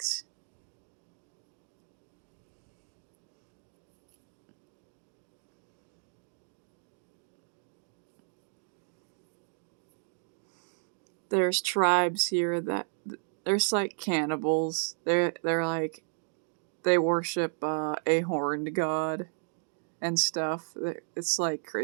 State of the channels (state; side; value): silent; left; digital silence